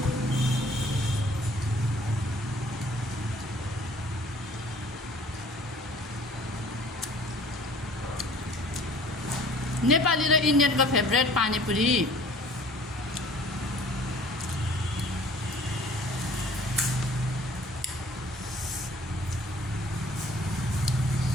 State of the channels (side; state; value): both; normal; correlation 0.51